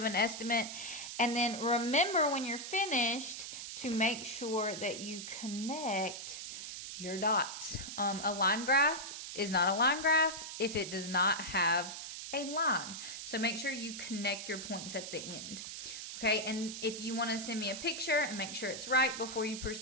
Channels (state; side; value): noise; right; hiss, 8 dB below the sound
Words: an estimate. And then remember when you're finished to make sure that you connect your dots. A line graph is not a line graph if it does not have a line. So make sure you connect your points at the end. Okay, and if you want to send me a picture and make sure it's right before you